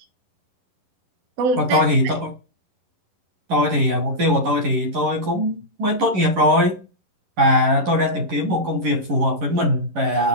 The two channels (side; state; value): left; late; 11 ms